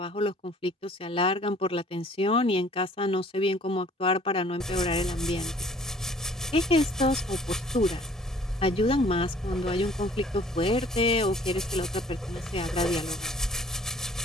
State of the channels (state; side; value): normal; both; correlation 0.54